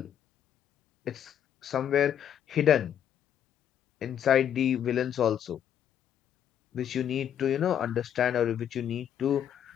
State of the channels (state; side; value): quieter; right; 9.5 dB